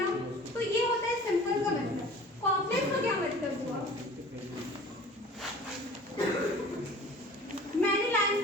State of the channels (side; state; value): both; normal; correlation 0.44